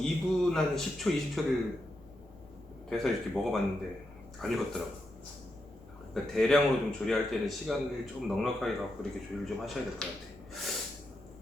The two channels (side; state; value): left; noise; rumble, 26 dB below the sound